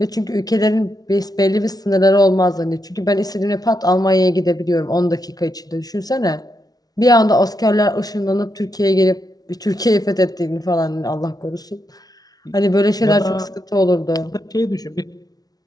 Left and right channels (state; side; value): late; right; 0.19 ms